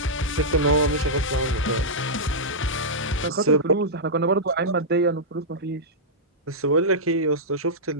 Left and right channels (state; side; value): normal; both; correlation -0.11